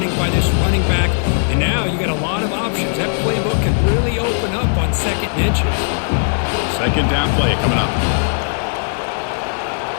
by this running back. And now you got a lot of options. That playbook can really open up on 2nd and inches. Second down play coming up.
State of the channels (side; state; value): right; silent; digital silence